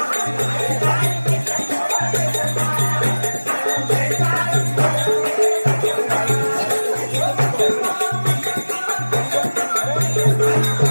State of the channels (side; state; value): both; inverted; correlation -1.00